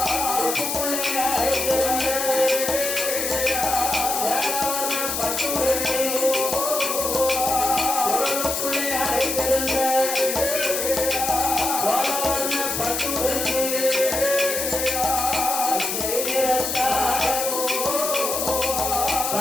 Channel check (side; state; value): left; noise; hiss, 2 dB below the sound